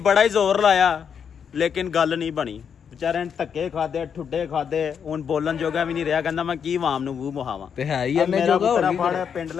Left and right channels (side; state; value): right; quieter; 7.3 dB